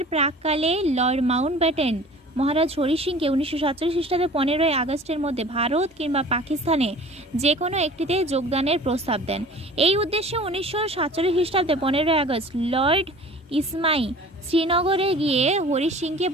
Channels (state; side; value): normal; both; correlation 0.45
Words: প্রাককালে লর্ড মাউন্টব্যাটেন মহারাজ হরি সিংকে 1947 খ্রিস্টাব্দে 15ই আগস্টের মধ্যে ভারত কিংবা পাকিস্তানে যে কোনো একটিতে যোগদানের প্রস্তাব দেন। এই উদ্দেশ্যে 1947 খ্রিস্টাব্দে 15ই আগস্ট লর্ড ইসমাই শ্রীনগরে গিয়ে হরি সিংকে